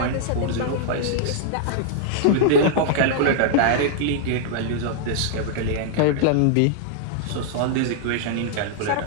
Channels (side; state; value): both; different; correlation -0.01